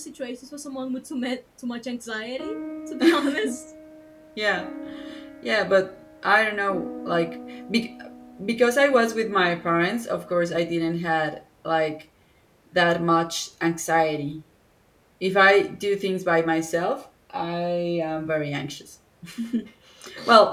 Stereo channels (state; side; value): identical; both; correlation 1.00